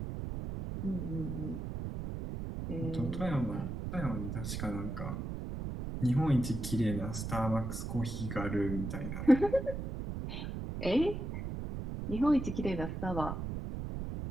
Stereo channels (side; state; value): right; noise; rumble, 5 dB below the sound